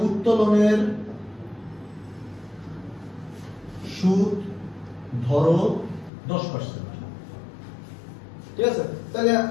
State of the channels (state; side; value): drops out; right; at 6.1 s